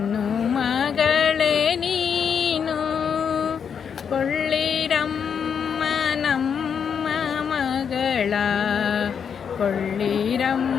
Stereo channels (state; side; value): quieter; right; 7.2 dB